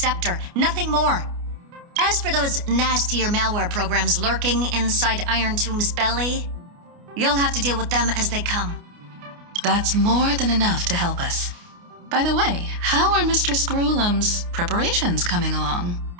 nothing more. As for those nastier malware programs lurking inside Iron Tomb's belly, you'll have to deal with them as they come. That's more than enough to help us. By the way, how are Mr. Screwlum's preparations coming along?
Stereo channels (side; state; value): left; late; 29 ms